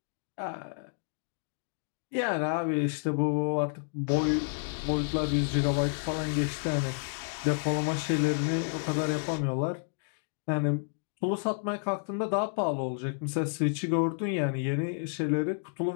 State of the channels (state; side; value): silent; right; digital silence